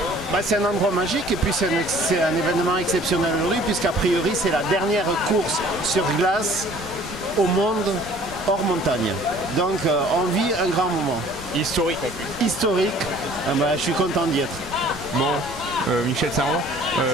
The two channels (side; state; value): left; noise; rumble, 16 dB below the sound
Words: Bah, c'est un endroit magique et puis c'est un événement exceptionnel aujourd'hui, puisqu'a priori, c'est la dernière course sur glace au monde hors montagne. Donc on vit un grand moment. Historique en plus. Historique, je suis content d'y être. Bon, Michel Saran,